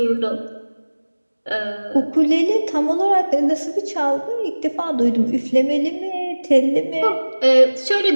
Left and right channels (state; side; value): inverted; both; correlation -1.00